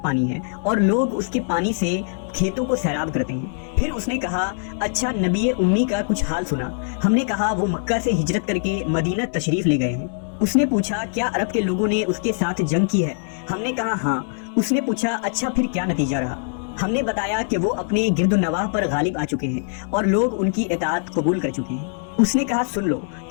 पानी है और लोग उसके पानी से खेतों को सैराब करते हैं। फिर उसने कहा, अच्छा नबी उम्मी का कुछ हाल सुना? हमने कहा, वो मक्का से हिजरत करके मदीना तशरीफ ले गए हैं। उसने पूछा, क्या अरब के लोगों ने उसके साथ जंग की है? हमने कहा, हाँ। उसने पूछा, अच्छा फिर क्या नतीजा रहा? हमने बताया कि वो अपने गिरदुनवाह पर गालिब आ चुके हैं और लोग उनकी इताअत कबूल कर चुके हैं। उसने कहा, सुन लो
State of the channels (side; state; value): right; silent; digital silence